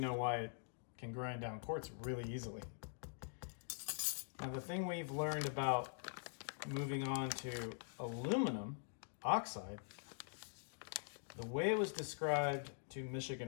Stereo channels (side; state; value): right; silent; digital silence